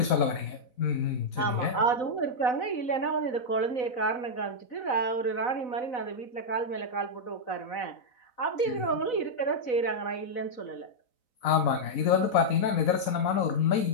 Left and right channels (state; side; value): late; right; 4.0 ms